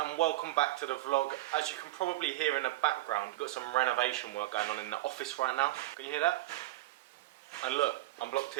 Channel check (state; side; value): quieter; left; 17.0 dB